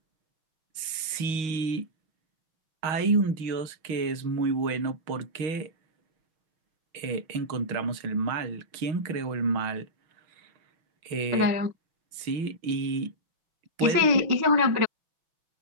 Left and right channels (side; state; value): left; late; 6.4 ms